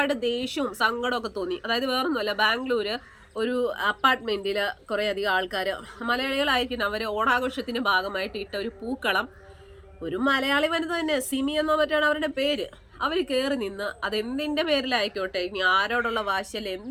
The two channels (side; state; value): both; identical; correlation 1.00